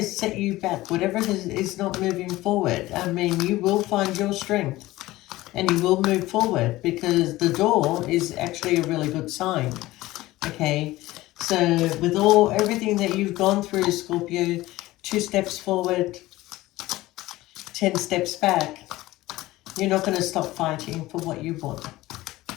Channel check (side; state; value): right; quieter; 17.7 dB